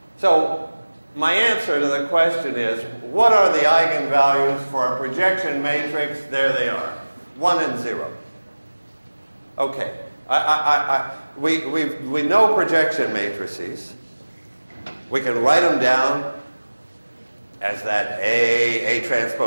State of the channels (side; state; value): both; inverted; correlation -1.00